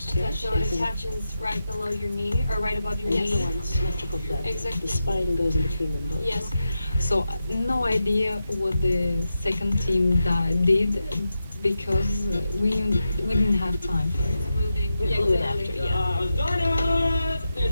to it. So it attaches right below your knee, or right above your And the knee. other one's symmetrical thread. Exactly. The spine goes in between them both. Yes. So no idea what the second team did because we didn't have time for it. Moving. We glue it after, yeah. Diners! There's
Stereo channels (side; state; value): both; inverted; correlation -0.89